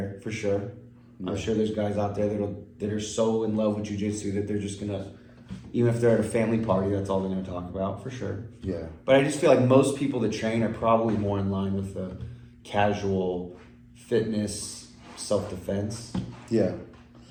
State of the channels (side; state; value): both; identical; correlation 1.00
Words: for sure. I'm sure there's guys out there that are so in love with jiu-jitsu that they're just gonna, even if they're at a family party, that's all they're gonna talk about, for sure. But I just feel like most people that train are probably more in line with the casual fitness, self-defense